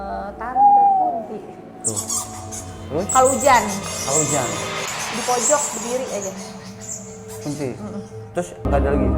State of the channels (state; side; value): identical; both; correlation 1.00